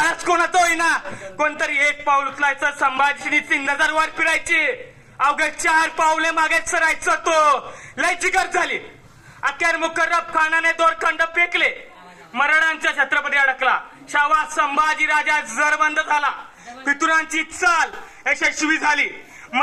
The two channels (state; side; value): identical; both; correlation 1.00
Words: कोणाचा होईना कोणतरी एक पाऊल उचलायचं संभाजीची नजर वर फिरायची अवघे 4 पावले मागे सरायचं तो लय जिगर झाली अखेर मुकर्रब खानाने दोरखंड फेकले मराठांच्या छत्रपती अडकला शावा संभाजी राजा जरबंद झाला पितुरांची चाल यशस्वी झाली